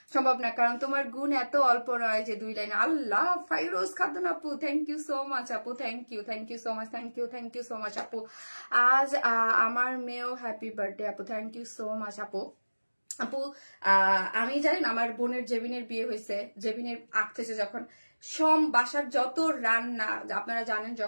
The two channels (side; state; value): both; inverted; correlation -1.00